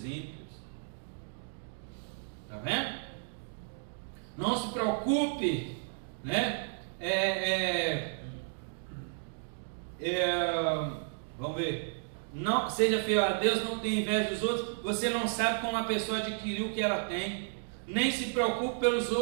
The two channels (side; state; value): left; silent; digital silence